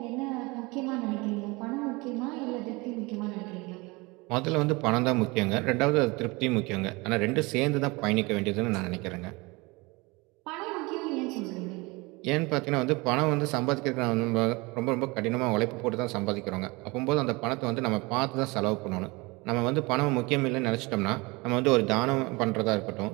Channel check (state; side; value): quieter; left; 24.9 dB